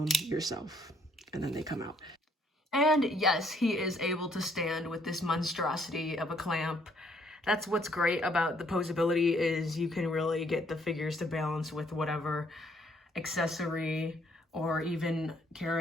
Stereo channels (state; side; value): normal; both; correlation 0.66